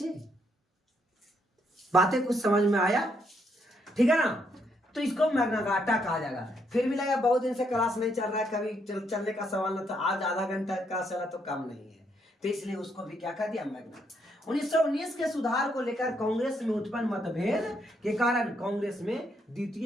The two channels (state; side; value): normal; both; correlation 0.74